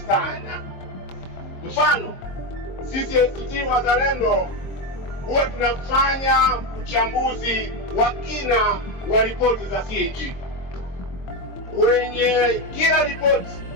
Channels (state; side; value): late; right; 22 ms